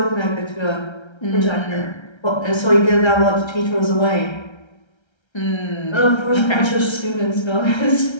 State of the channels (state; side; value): late; right; 1.3 ms